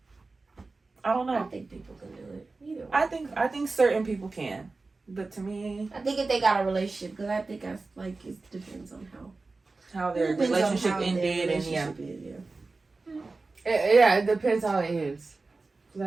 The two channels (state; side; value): quieter; left; 3.7 dB